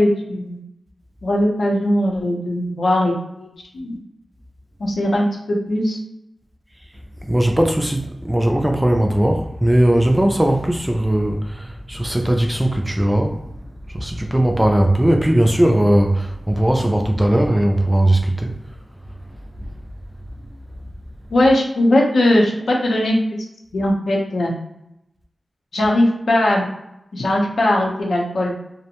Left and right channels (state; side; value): normal; both; correlation 0.96